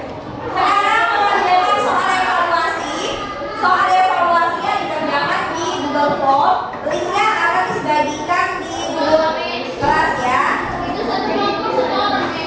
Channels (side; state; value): both; identical; correlation 1.00